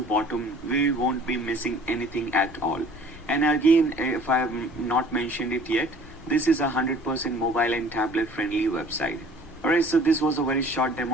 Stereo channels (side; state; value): both; normal; correlation 0.50